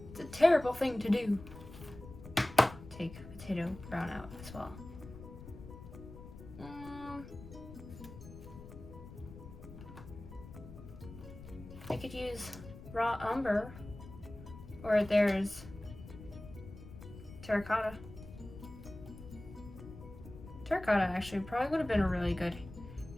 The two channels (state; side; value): noise; left; rumble, 14 dB below the sound